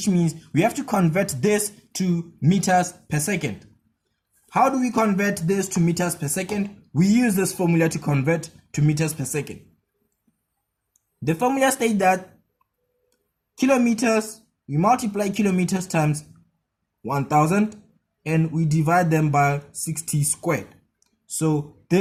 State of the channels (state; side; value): identical; both; correlation 1.00